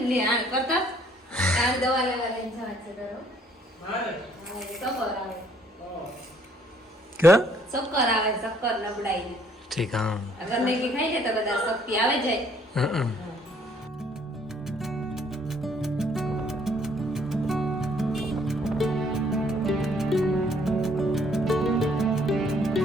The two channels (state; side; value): normal; both; correlation 0.63